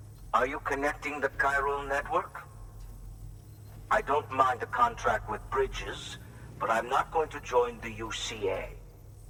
Are you connecting the chiral network? I don't mind a contract with Bridges, but I'm not going to join the UCA.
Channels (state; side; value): identical; both; correlation 1.00